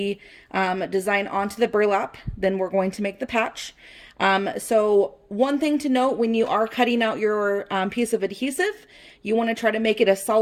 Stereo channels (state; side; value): identical; both; correlation 1.00